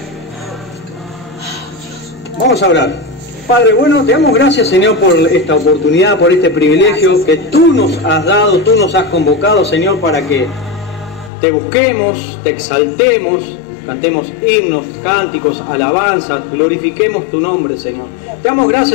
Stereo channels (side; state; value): right; drops out; at 11.3 s